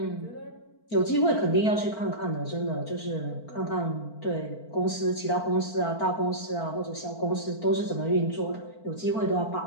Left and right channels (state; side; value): late; right; 4.5 ms